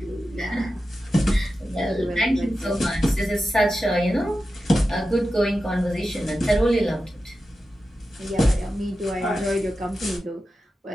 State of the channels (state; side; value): normal; both; correlation 0.92